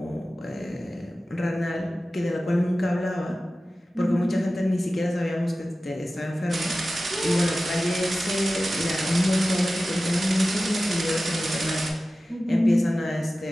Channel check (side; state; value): both; normal; correlation 0.95